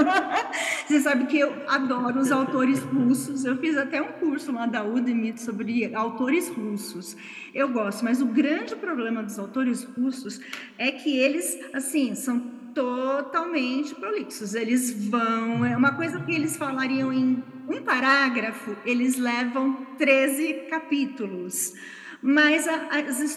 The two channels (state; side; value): identical; both; correlation 1.00